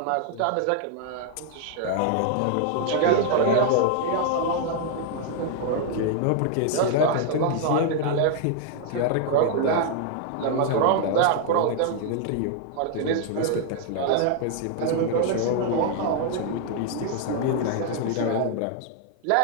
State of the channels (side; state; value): both; different; correlation 0.00